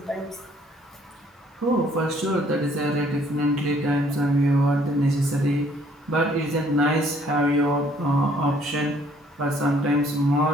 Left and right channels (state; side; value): normal; both; correlation 0.62